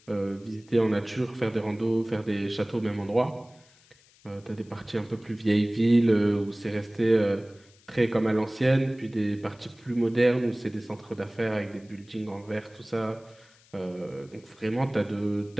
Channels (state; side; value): noise; left; hiss, 29 dB below the sound